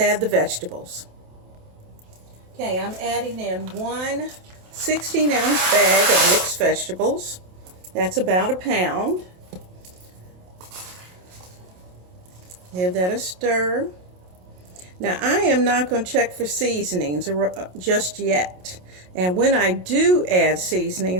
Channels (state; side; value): late; left; 27 ms